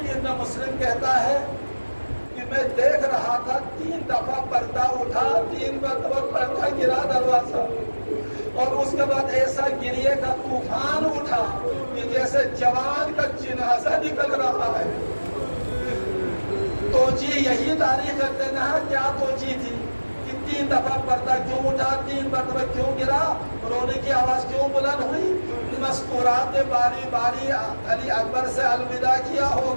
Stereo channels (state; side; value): inverted; both; correlation -1.00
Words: ابن مسلم کہتا ہے کہ میں دیکھ رہا تھا 3 دفعہ پردہ اٹھا، 3 مرتبہ پردہ گرا دروازہ، اور اس کے بعد ایسا گریے کا طوفان اٹھا کہ جیسے جوان کا جنازہ نکل رہا ہے۔ توجیہ یہی تاریخ رکھتے ہیں، کیا توجیہ تھی کہ 3 دفعہ پردہ کیوں اٹھا، 3 مرتبہ کیوں گرا، رونے کی آواز کیوں بلند ہوئی؟ مذکورات نے باری باری علی اکبر سے الوداع کیا